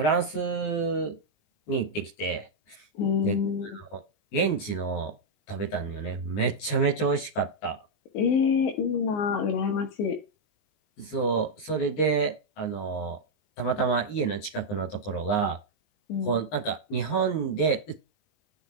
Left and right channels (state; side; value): late; right; 19 ms